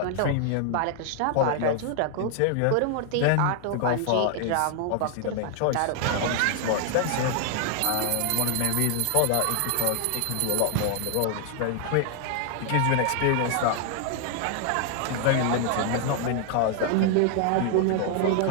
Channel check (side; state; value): both; different; correlation 0.00